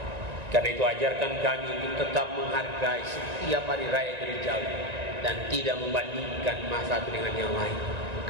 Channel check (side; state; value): left; late; 1.9 ms